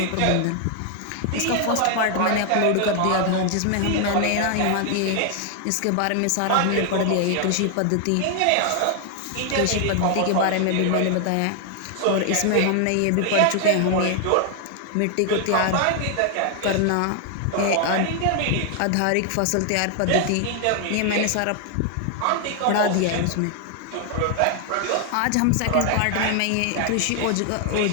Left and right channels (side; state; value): both; different; correlation 0.00